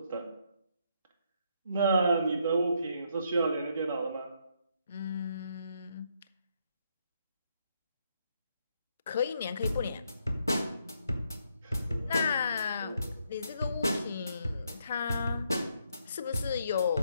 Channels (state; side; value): inverted; both; correlation -0.74